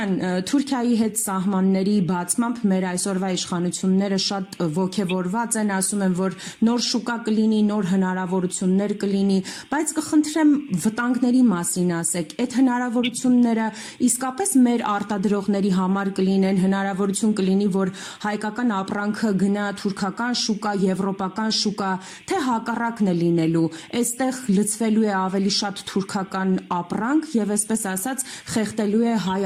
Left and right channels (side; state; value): both; identical; correlation 1.00